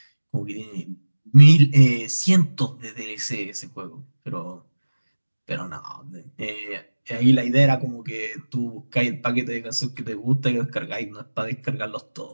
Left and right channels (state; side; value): inverted; both; correlation -1.00